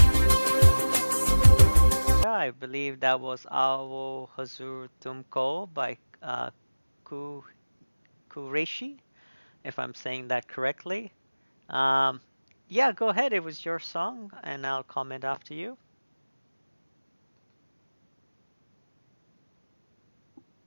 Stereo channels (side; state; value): both; inverted; correlation -1.00